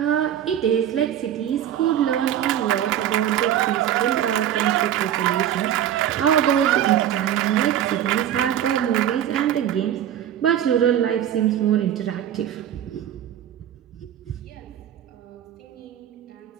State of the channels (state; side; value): quieter; left; 10.8 dB